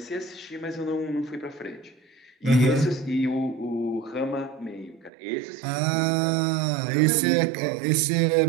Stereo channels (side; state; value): left; drops out; at 5.1 s